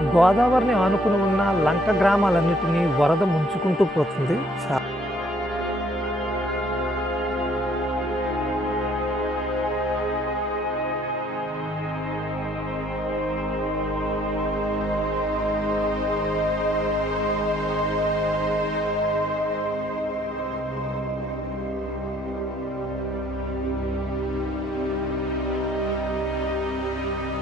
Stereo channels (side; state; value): both; normal; correlation 0.64